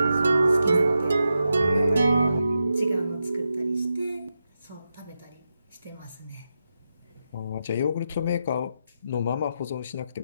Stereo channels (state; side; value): inverted; both; correlation -0.87